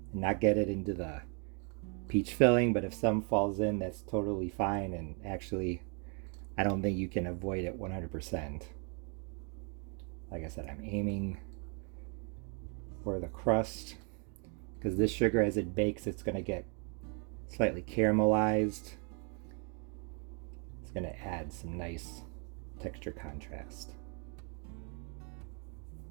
and not get it into the peach filling, but if some falls in, that's totally fine, and actually I don't think you can avoid it 100%. Like I said, I'm aiming for the crust because this sugar, as it bakes, it's going to get slightly caramelized. It's going to add some nice texture contrast.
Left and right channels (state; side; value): quieter; left; 38.4 dB